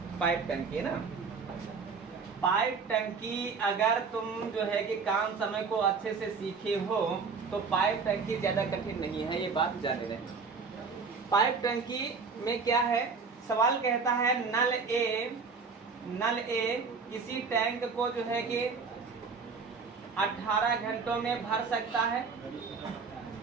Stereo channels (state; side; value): quieter; left; 5.0 dB